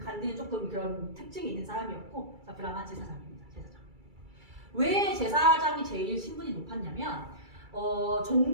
간디는 조금 그런 특징이 있는 사람이었고, 자, 브라만 제사장입니다. 제사장. 왜 제사장이 제일 신분이 높았냐면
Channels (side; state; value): left; late; 2.3 ms